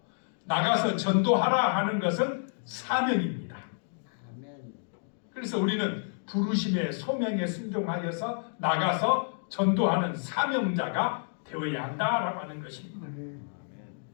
나가서 전도하라 하는 것은 사명입니다. 그래서 우리는 부르심의 소명에 순종하여서 나가서 전도하는 사명자가 되어야 한다라고 하는 것입니다.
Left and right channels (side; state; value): right; silent; digital silence